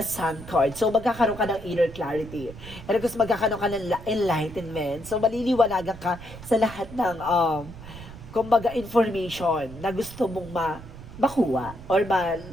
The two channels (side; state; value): right; noise; rumble, 15 dB below the sound